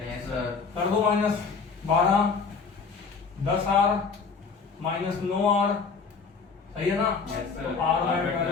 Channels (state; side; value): quieter; right; 5.1 dB